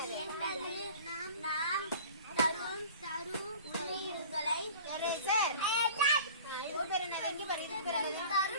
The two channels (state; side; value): inverted; both; correlation -0.43